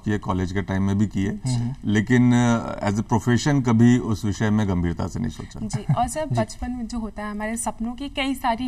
कॉलेज के टाइम में भी किए, लेकिन एज ए प्रोफेशन कभी उस विषय में गंभीरता से नहीं सोचा। जी। और सर, बचपन बचपन में जो होता है हमारे सपनों की कई सारी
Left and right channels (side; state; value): both; identical; correlation 1.00